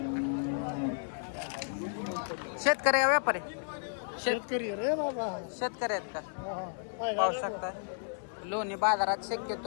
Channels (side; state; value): right; silent; 56 dB below the other